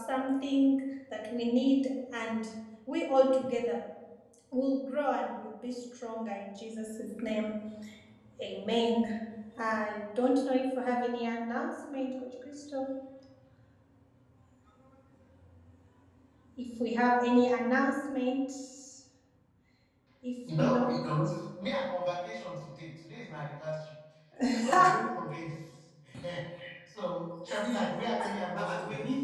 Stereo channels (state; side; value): identical; both; correlation 1.00